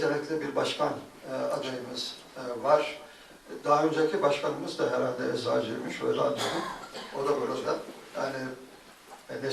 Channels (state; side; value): identical; both; correlation 1.00